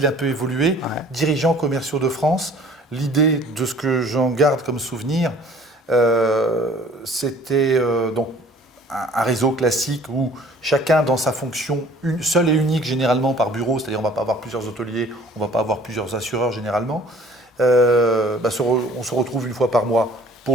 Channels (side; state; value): both; normal; correlation 0.52